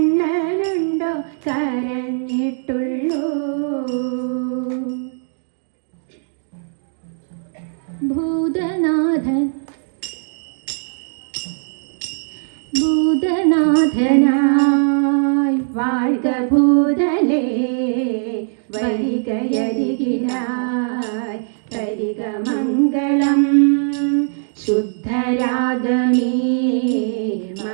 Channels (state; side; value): silent; left; digital silence